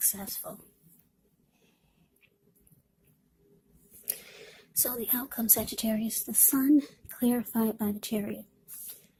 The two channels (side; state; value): both; identical; correlation 1.00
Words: So the outcome, Sagittarius, the Sun clarified by the Chariot.